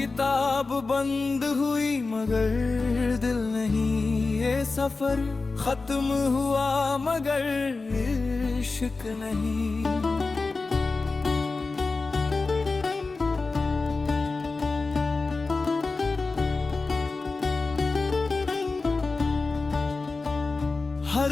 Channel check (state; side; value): quieter; right; 3.8 dB